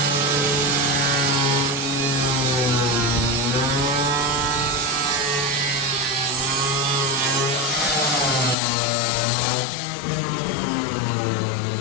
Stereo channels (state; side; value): drops out; right; at 8.6 s